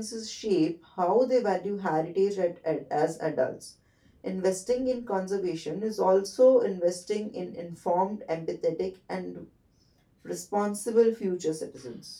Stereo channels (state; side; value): identical; both; correlation 1.00